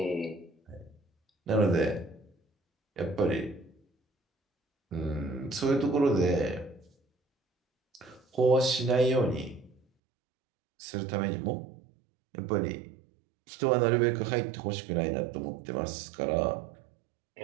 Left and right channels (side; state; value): left; drops out; at 9.8 s